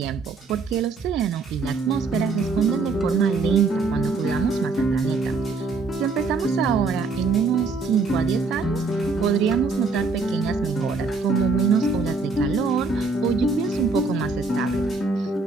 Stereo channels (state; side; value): quieter; left; 4.1 dB